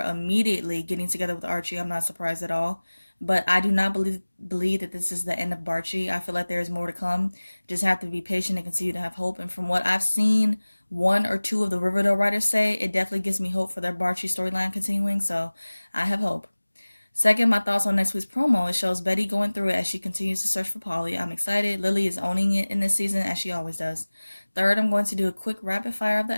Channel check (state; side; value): inverted; both; correlation -1.00